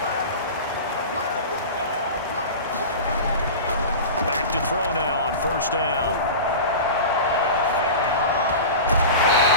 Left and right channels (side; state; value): both; inverted; correlation -0.31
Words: Back to throw now on 1st down.